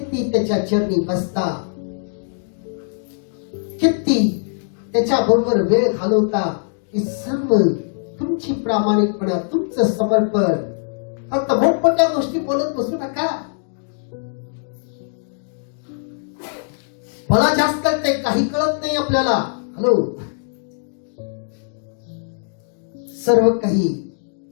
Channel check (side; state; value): right; silent; digital silence